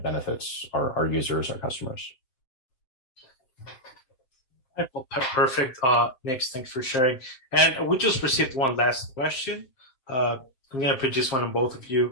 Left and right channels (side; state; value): right; late; 7.6 ms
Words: benefits our users, our customers. Well, perfect. Nick, thanks for sharing. And we just received one last question. I'm going to produce one on both of